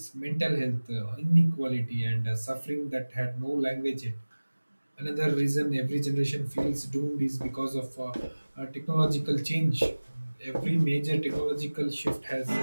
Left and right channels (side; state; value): both; inverted; correlation -1.00